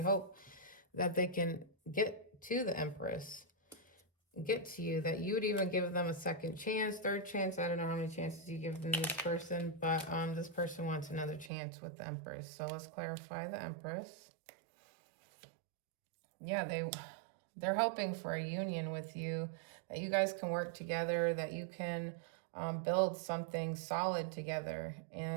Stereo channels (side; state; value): left; drops out; at 11.5 s